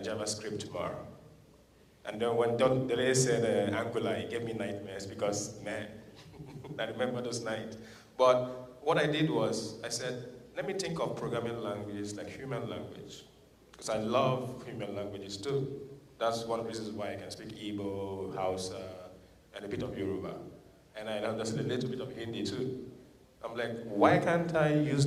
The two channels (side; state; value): both; identical; correlation 1.00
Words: tomorrow. And then when Dele said Angular, it gave me nightmares because, man, I remember those nights. But what I did was, I said, let me think of programming languages like human language. Because I love human languages too. That's one of the reasons why I can speak Igbo, Hausa, and a bit of Yoruba. And I understand a little bit of Hindi too. I'm like, why can't I use